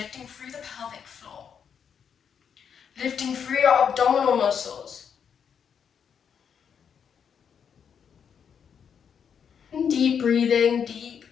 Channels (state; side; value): quieter; right; 7.4 dB